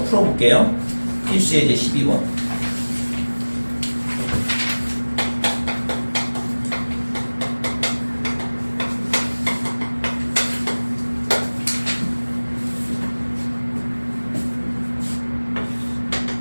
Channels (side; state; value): both; inverted; correlation -1.00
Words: 풀어볼게요. 필수 예제 12번.